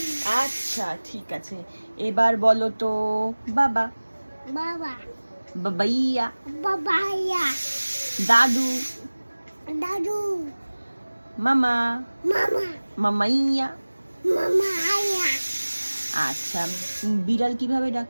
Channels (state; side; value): inverted; both; correlation -1.00